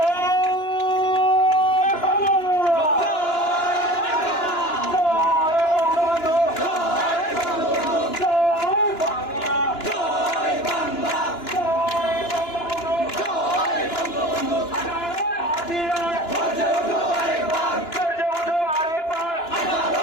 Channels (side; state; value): right; late; 2.9 ms